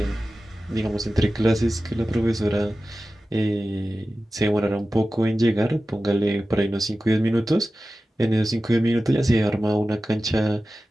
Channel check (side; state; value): both; normal; correlation 0.95